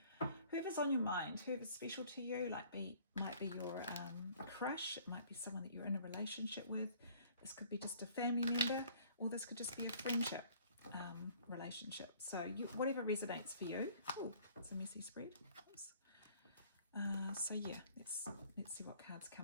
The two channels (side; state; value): both; inverted; correlation -0.55